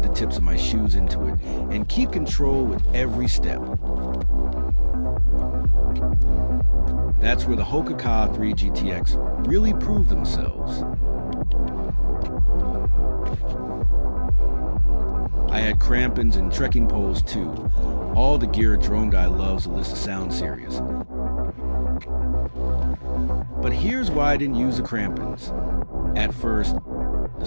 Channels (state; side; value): inverted; both; correlation -1.00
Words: the tips of my shoes into it and keep control with every step. That's where the Hoka 3 GTX really proved themselves. I had crampons and trekking poles too, all the gear a drone guy loves to list to sound serious. But here's why I didn't use the crampons. At first, the